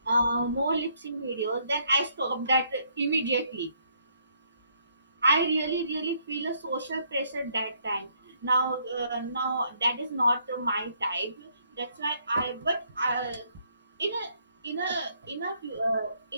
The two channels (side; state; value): both; inverted; correlation -0.69